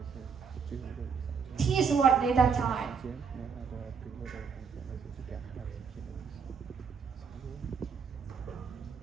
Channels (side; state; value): left; quieter; 6.0 dB